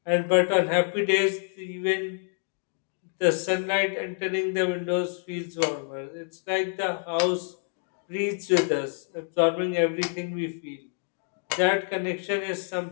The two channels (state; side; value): silent; right; 60 dB below the other